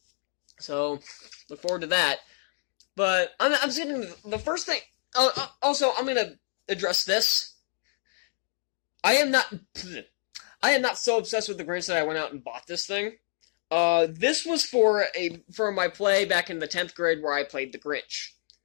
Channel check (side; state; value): right; silent; digital silence